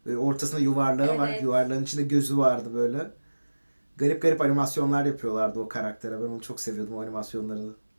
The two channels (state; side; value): inverted; both; correlation -1.00